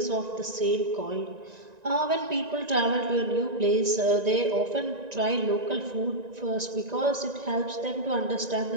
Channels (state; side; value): late; left; 1.9 ms